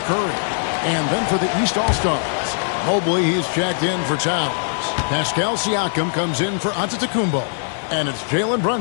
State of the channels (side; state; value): right; silent; digital silence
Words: Curry. And then for the East All-Stars, Mobley, he's checked in for Towns. Pascal Siakam comes in for Antetokounmpo. And it's Jalen